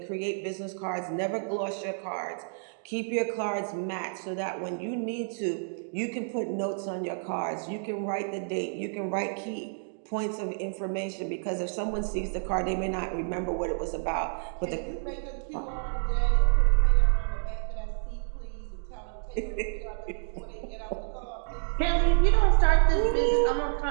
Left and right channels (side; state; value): left; silent; digital silence